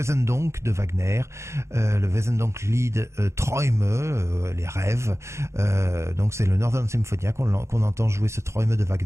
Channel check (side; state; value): left; late; 0.14 ms